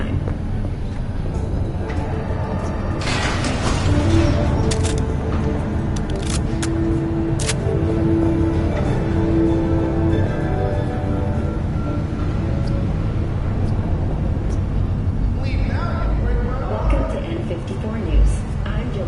Welcome to N54 News. I'm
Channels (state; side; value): identical; both; correlation 1.00